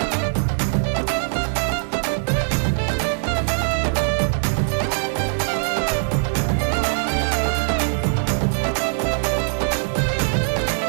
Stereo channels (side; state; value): left; silent; digital silence